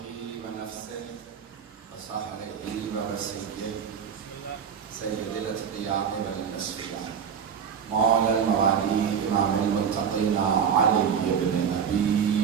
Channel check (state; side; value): quieter; left; 7.4 dB